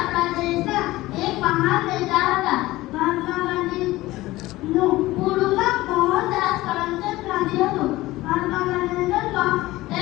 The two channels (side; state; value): right; quieter; 18.1 dB